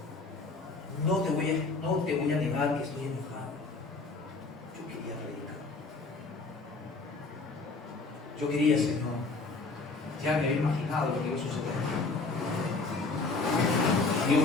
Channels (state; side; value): quieter; right; 3.7 dB